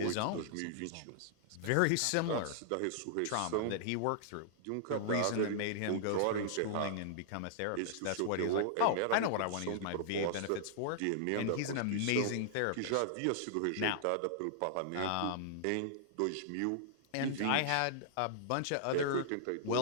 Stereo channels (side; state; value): both; different; correlation -0.01